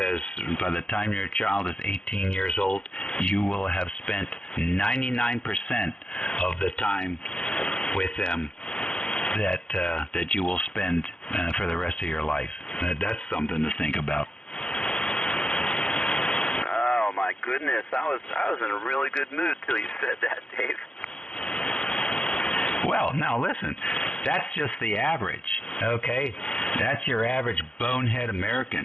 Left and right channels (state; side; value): late; right; 0.056 ms